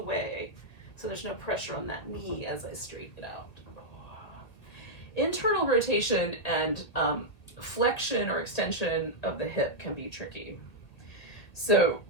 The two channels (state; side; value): late; right; 2.0 ms